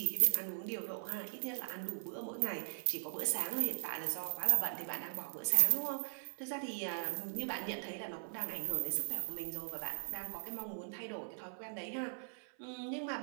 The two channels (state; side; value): silent; left; 51 dB below the other